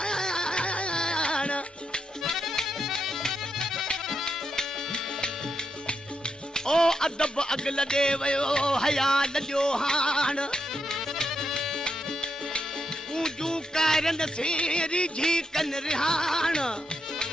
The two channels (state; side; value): normal; both; correlation 0.83